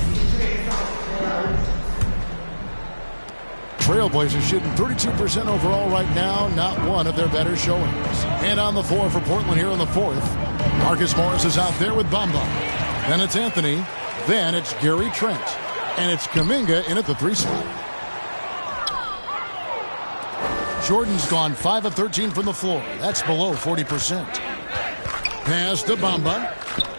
Trailblazers shooting 32% overall right now, not one of their better showings. And on the floor for Portland here in the fourth, Marcus Morris is out there with Bamba. Then it's Anthony. Then it's Gary Trent. And it's Kuminga in at the 3 spot. Jordan's gone 5 of 13 from the floor. That's below 40%. Pass to Bamba.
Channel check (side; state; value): both; inverted; correlation -1.00